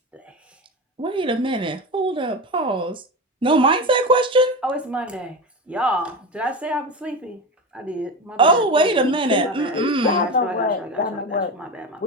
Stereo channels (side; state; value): both; normal; correlation 0.22